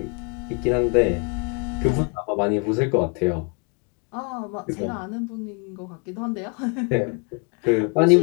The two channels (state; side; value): quieter; right; 34.5 dB